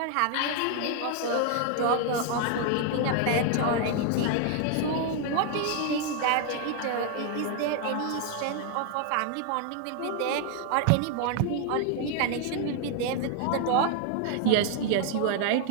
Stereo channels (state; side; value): different; both; correlation 0.00